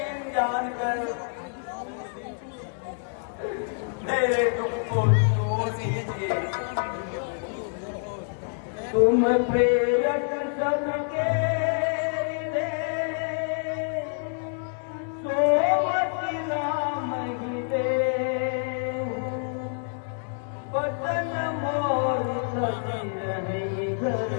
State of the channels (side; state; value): right; silent; 60 dB below the other